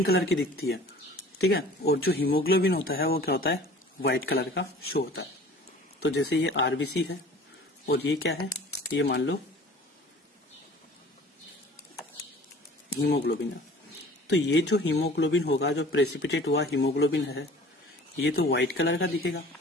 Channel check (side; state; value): both; normal; correlation 0.46